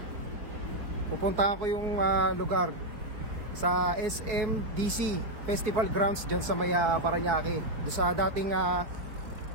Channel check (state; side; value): late; left; 4.8 ms